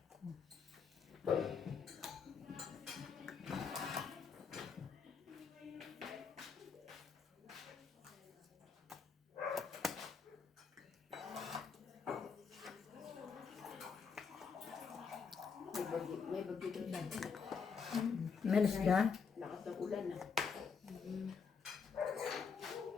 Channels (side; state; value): right; quieter; 5.8 dB